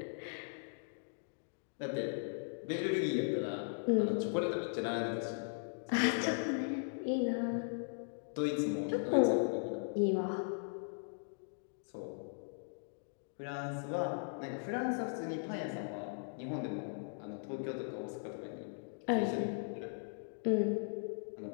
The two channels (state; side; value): silent; right; digital silence